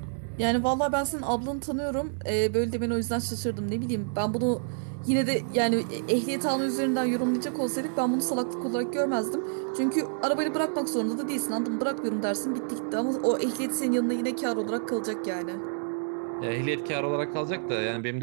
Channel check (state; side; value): silent; left; digital silence